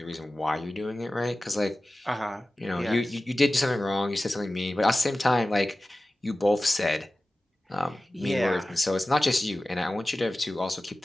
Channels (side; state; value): both; normal; correlation 0.96